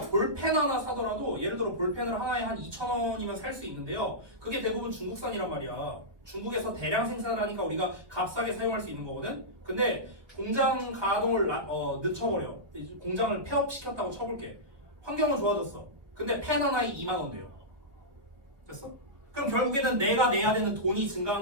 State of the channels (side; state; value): left; late; 1.5 ms